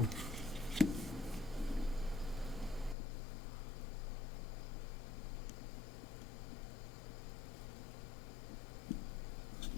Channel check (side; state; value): right; drops out; at 3.0 s